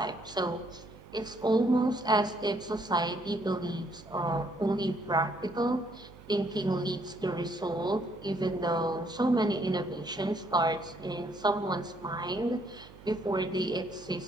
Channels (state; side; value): noise; right; hum, 20 dB below the sound